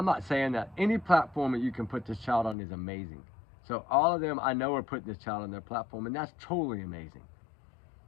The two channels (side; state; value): right; drops out; at 2.6 s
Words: not saying that any platform that you can put this child on is amazing. So all of them, I know, are putting this child on their platform, and that's totally amazing.